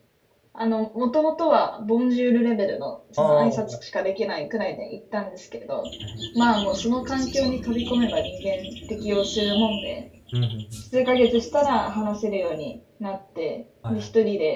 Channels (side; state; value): both; identical; correlation 1.00